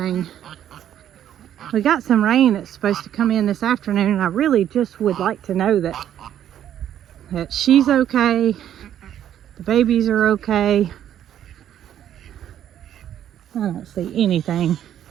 We got some rain that's supposed to come in this afternoon, and I really just would like to know that she's okay, the babies are okay. I don't see anything.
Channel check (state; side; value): quieter; left; 10.6 dB